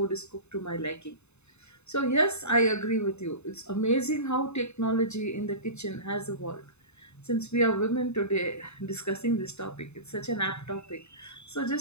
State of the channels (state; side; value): late; right; 0.81 ms